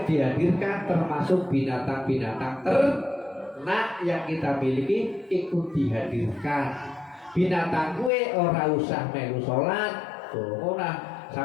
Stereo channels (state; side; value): drops out; right; at 8.1 s